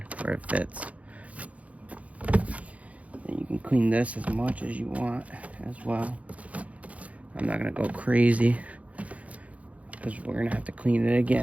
where it fits. And you can clean this as much as you want as well. I'm not gonna go crazy, because we're gonna have to clean it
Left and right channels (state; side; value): late; left; 0.067 ms